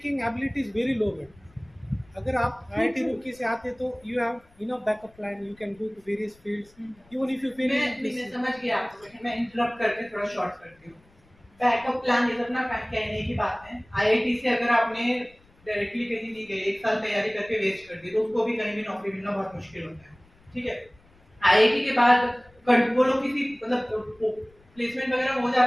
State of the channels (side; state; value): left; noise; rumble, 30 dB below the sound